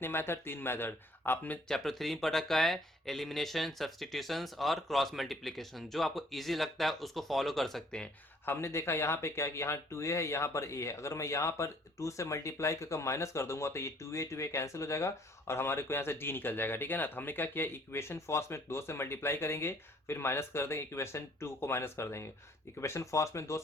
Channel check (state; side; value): normal; both; correlation 0.60